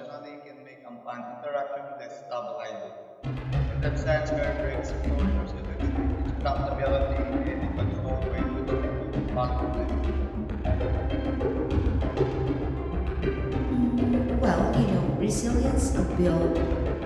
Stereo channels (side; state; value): both; identical; correlation 1.00